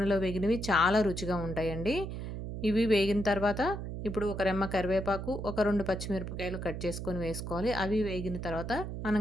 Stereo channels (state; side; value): noise; right; hum, 6 dB below the sound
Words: వేగినవి చాలా రుచిగా ఉంటాయండి. ఇవి వేగిన తర్వాత ఇప్పుడు ఒక రెమ్మ కరివేపాకు, ఒక 2 పచ్చిమిరపకాయలు కట్ చేసుకొని వేసుకోవాలి. అవి వేగిన తర్వాత మనం